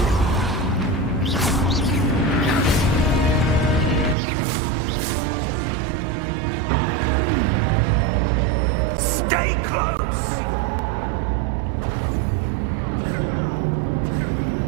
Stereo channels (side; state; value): left; drops out; at 4.2 s